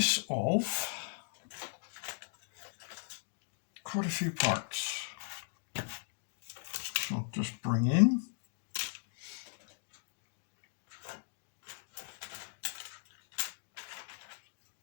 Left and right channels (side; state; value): right; silent; digital silence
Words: of quite a few parts. So I'll just bring in.